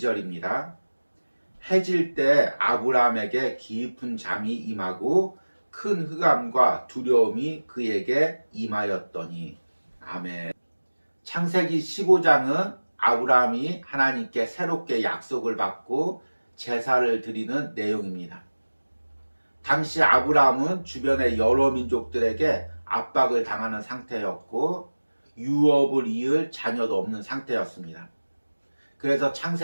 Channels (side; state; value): both; inverted; correlation -1.00